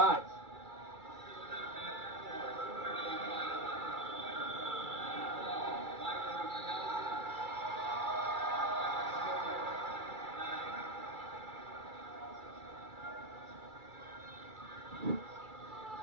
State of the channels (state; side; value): late; left; 2.3 ms